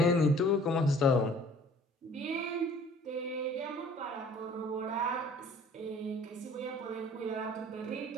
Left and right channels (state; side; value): normal; both; correlation 0.51